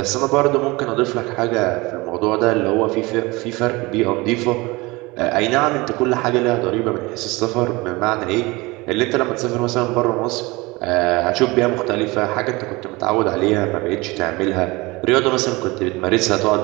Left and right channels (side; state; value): left; quieter; 23.3 dB